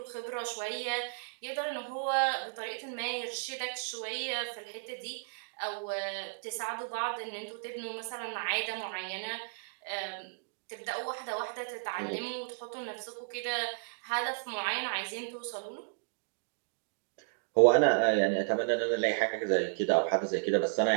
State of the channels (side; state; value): left; silent; digital silence